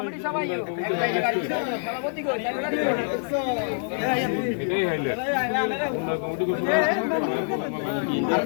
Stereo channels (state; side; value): silent; right; 61 dB below the other